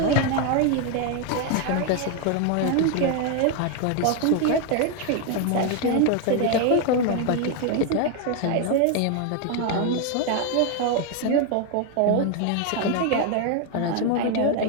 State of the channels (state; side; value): different; both; correlation 0.01